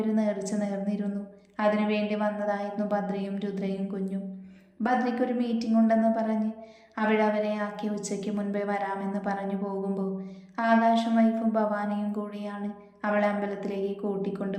ഒരു നേർച്ച നേർന്നിരുന്നു. അതിനു വേണ്ടി വന്നതായിരുന്നു ഭദ്രയും രുദ്രയും കുഞ്ഞും. ഭദ്രയ്ക്കൊരു മീറ്റിംഗ് ഉണ്ടെന്ന് പറഞ്ഞ് അവിടെ അവരെ ആക്കി ഉച്ചയ്ക്ക് മുൻപേ വരാമെന്ന് പറഞ്ഞു പോകുമ്പോൾ ആകാശം വൈഫും ഭവാനിയും കൂടിയാണ് അവളെ അമ്പലത്തിലേക്ക് കൂട്ടിക്കൊണ്ടു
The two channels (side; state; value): both; identical; correlation 1.00